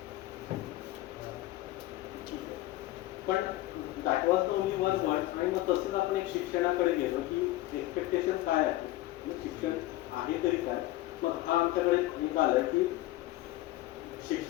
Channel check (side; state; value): right; quieter; 17.0 dB